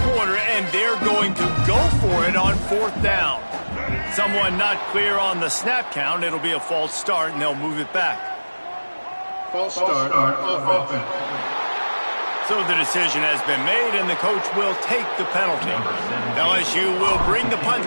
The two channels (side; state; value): both; inverted; correlation -1.00